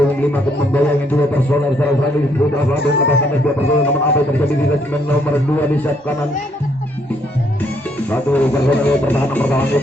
akan membayangin 2 personel serang-serang di Putra Satria lepaskan 2 personel namun apa yang terjadi di lesmen nomor 2 di saat kanan satu personel pertahanan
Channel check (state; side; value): normal; both; correlation 0.70